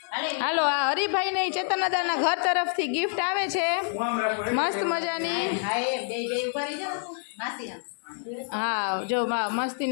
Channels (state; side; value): silent; right; 59 dB below the other